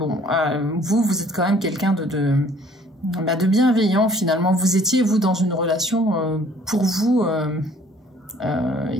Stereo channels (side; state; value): both; normal; correlation 0.57